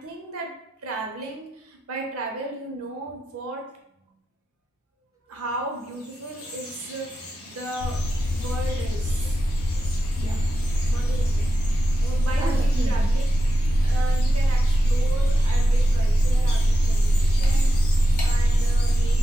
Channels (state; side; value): normal; both; correlation 0.91